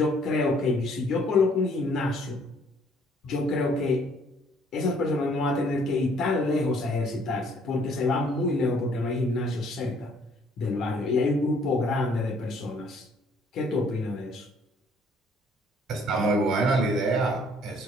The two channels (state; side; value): normal; both; correlation 0.62